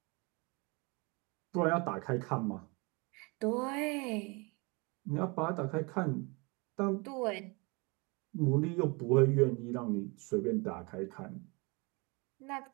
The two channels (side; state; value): left; quieter; 28.7 dB